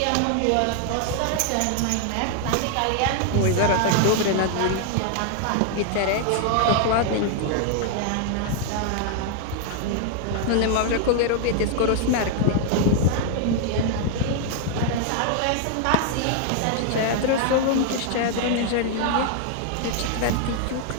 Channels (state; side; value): different; both; correlation 0.00